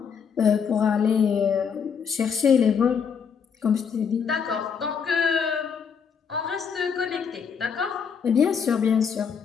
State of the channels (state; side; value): quieter; right; 6.6 dB